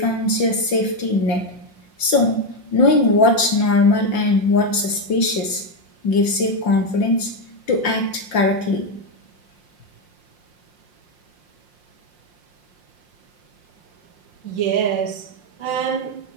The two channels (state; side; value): late; right; 5.6 ms